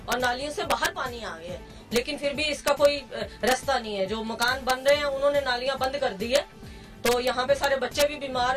नालियों से बाहर पानी आ गया है, लेकिन फिर भी इसका कोई रास्ता नहीं है। जो मकान बन रहे हैं उन्होंने नालियां बंद कर दी है, तो यहाँ पे सारे बच्चे भी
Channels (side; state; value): both; identical; correlation 1.00